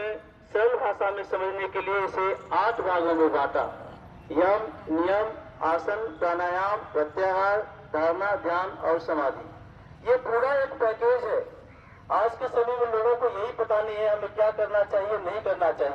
सरल भाषा में समझने के लिए इसे 8 भागों में बांटा। यम, नियम, आसन, प्राणायाम, प्रत्याहार, धारणा, ध्यान और समाधि। ये पूरा एक पैकेज है। आज के समय में लोगों को यही पता नहीं है हमें क्या करना चाहिए, नहीं करना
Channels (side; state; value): both; identical; correlation 1.00